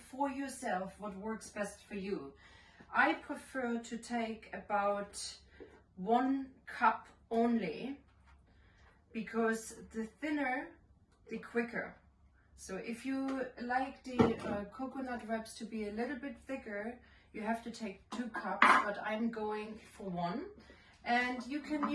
yourself what works best for you. I prefer to take about 1 cup only, because the thinner the quicker. So if you like the coconut wraps to be a little bit thicker, you have to take 2 cups, but I'm going for 1. And you can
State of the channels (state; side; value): identical; both; correlation 1.00